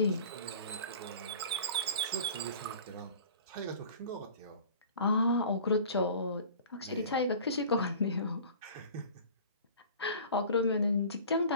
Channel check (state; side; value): inverted; both; correlation -0.43